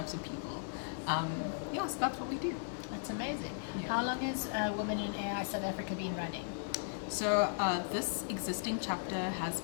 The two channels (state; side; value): silent; right; digital silence